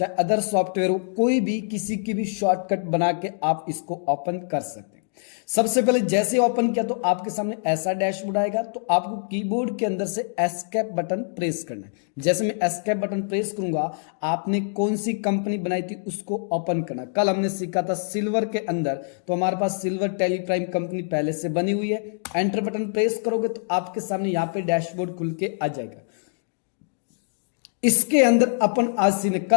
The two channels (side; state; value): right; silent; digital silence